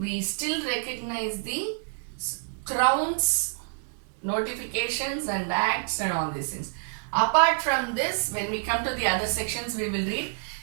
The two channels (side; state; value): left; silent; 59 dB below the other